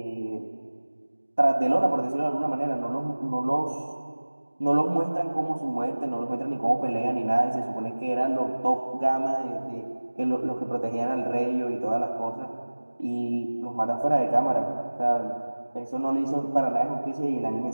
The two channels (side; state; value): both; inverted; correlation -1.00